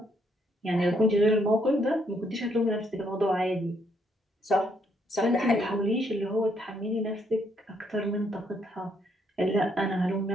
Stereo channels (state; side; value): normal; both; correlation 0.72